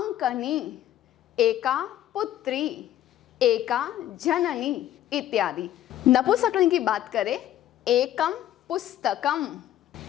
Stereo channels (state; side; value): quieter; right; 12.5 dB